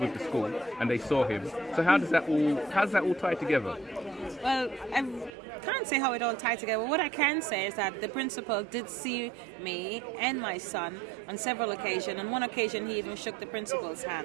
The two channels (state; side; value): drops out; left; at 5.3 s